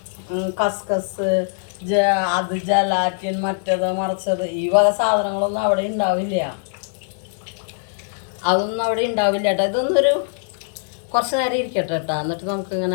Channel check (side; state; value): right; silent; digital silence